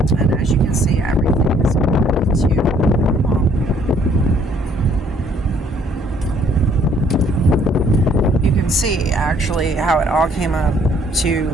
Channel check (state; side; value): normal; both; correlation 0.63